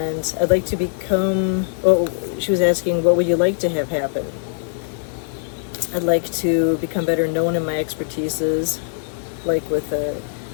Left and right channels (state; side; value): silent; right; digital silence